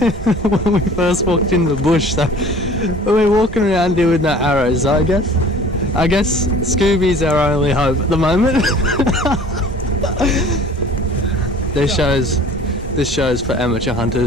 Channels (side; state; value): both; normal; correlation 0.47